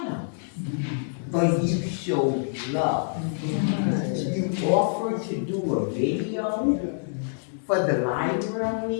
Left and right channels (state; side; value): silent; right; digital silence